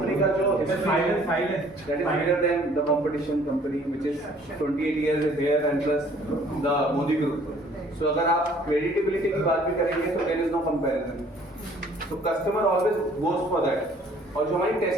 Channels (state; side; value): normal; both; correlation 0.57